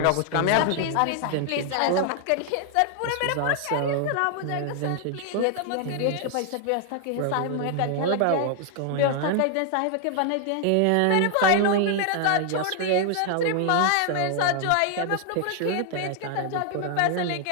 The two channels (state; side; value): different; both; correlation 0.00